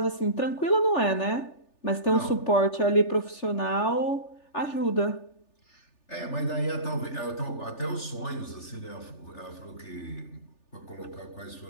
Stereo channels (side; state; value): right; late; 3.4 ms